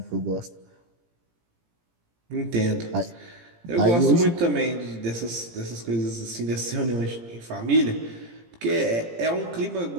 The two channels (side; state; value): left; late; 17 ms